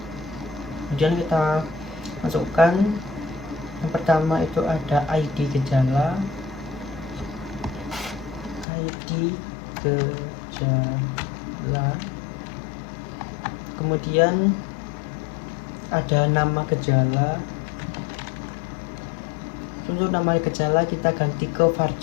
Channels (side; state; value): right; drops out; at 8.7 s